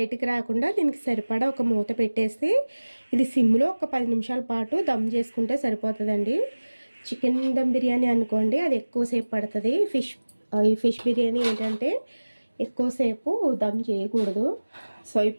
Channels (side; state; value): both; inverted; correlation -1.00